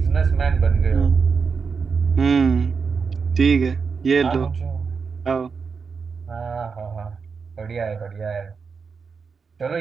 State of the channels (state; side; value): quieter; left; 5.4 dB